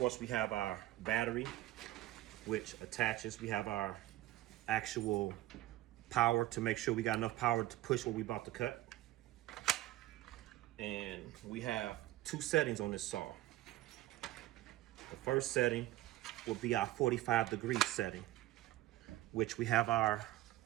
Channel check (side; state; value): left; quieter; 16.1 dB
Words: we have our battery, which attaches. We have our actual power to make sure we got enough power to push what we're about to cut. And we have two settings on this saw. The first setting will be our 45-degree setting, which we have our